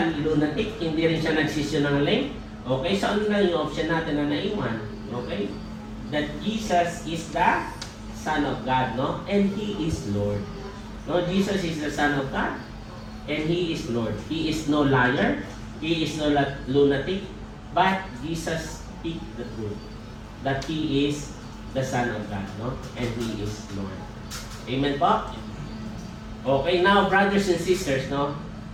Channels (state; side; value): identical; both; correlation 1.00